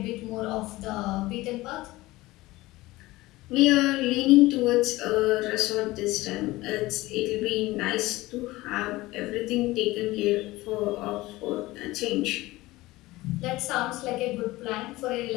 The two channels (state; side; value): quieter; right; 19.1 dB